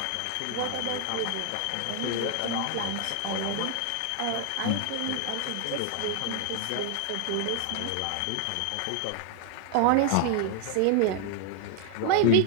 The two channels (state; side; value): different; both; correlation 0.00